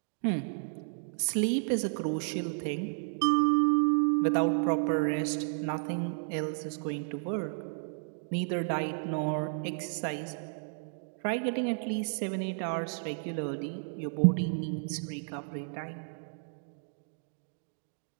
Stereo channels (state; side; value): silent; left; digital silence